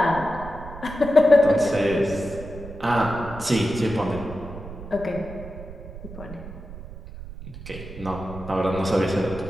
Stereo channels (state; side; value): noise; right; rumble, 13 dB below the sound